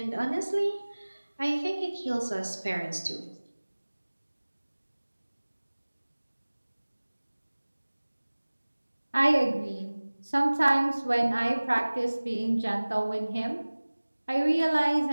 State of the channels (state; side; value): inverted; both; correlation -1.00